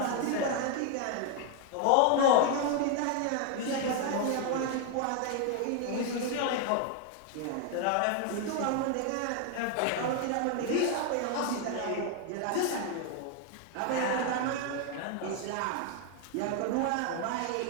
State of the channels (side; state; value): both; different; correlation 0.01